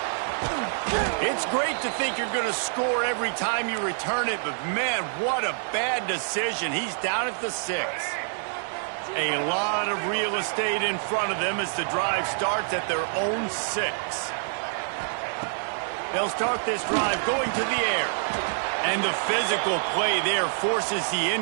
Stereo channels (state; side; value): silent; left; digital silence